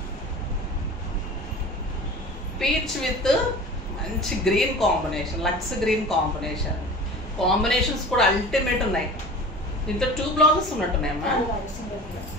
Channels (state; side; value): normal; both; correlation 0.38